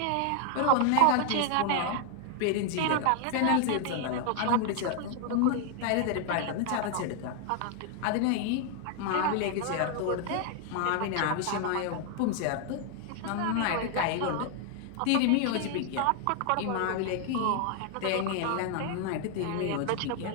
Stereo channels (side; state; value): both; different; correlation 0.00